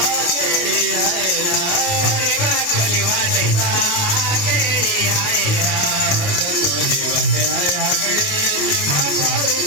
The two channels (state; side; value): late; right; 28 ms